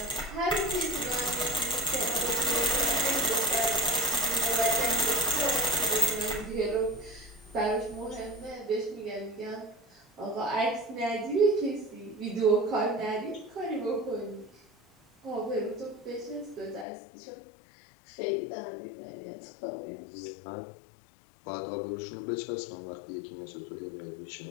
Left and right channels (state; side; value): drops out; right; at 16.9 s